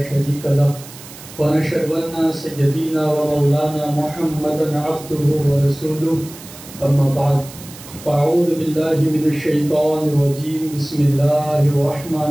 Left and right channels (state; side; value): noise; right; hiss, 17 dB below the sound